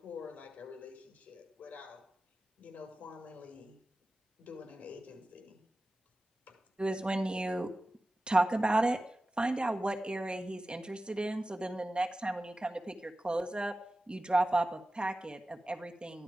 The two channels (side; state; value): both; normal; correlation 0.95